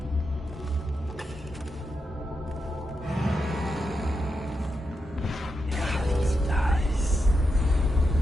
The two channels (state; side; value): normal; both; correlation 0.86